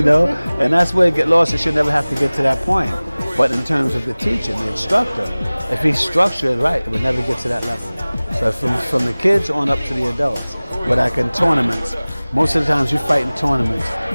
know, and that's where it get lost. It should never have to get to that point. But in terms of the teaching, the instructor, if he's structured right, it would never get to that level. So from the kids on up to the adults. But like in tournaments, most of the times you fight in tournaments,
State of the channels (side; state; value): both; inverted; correlation -0.99